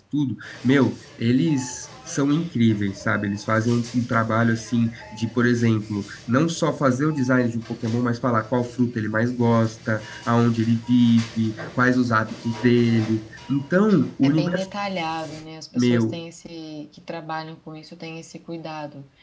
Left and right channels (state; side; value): identical; both; correlation 1.00